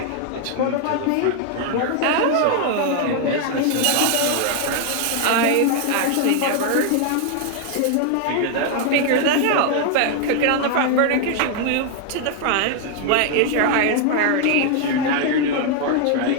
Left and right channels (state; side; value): different; both; correlation 0.00